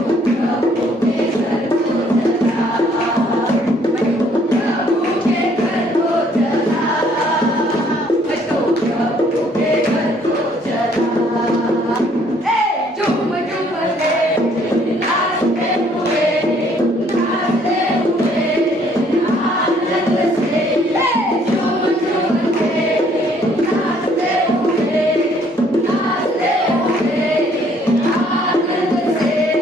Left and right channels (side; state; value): both; normal; correlation 0.63